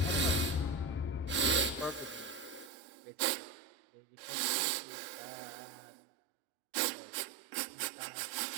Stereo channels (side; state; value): left; drops out; at 2.7 s